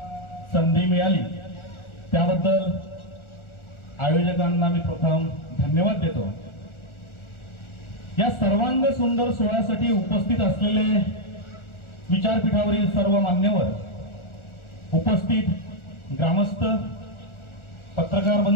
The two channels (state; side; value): late; right; 1.4 ms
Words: संधी मिळाली, त्याबद्दल आयोजकांना मी प्रथम धन्यवाद देतो। या सर्वांग सुंदर सोहळ्यासाठी उपस्थित असलेले विचारपीठावरील सर्व मान्यवर, उपस्थित ग्रामस्थ, पत्रकार